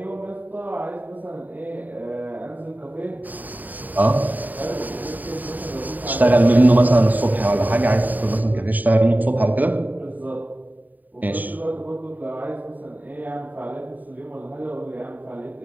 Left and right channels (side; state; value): left; late; 0.083 ms